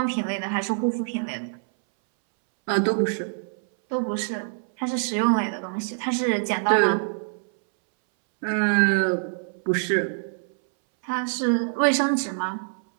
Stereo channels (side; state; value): left; silent; 62 dB below the other